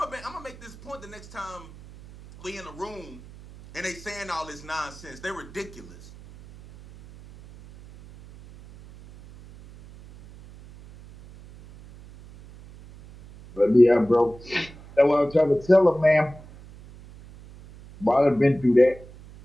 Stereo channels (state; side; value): noise; right; hum, 20 dB below the sound